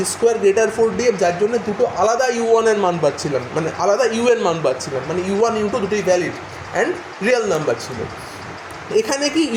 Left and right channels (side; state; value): both; identical; correlation 1.00